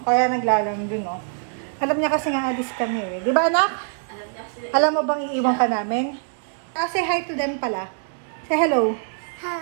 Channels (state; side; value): silent; left; digital silence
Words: Kaya naglalang din, oh. Alam niya kasi nga alis kami, eh. Di ba, anak? Alam mo bang iiwan ka namin? Say hi to them pala. Say hello.